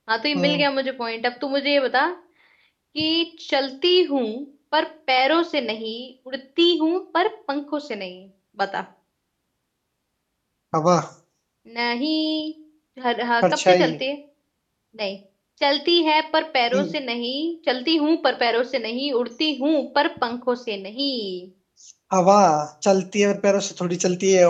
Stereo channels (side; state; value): both; identical; correlation 1.00